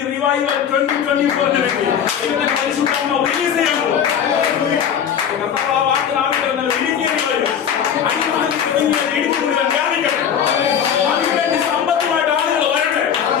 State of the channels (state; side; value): quieter; right; 8.4 dB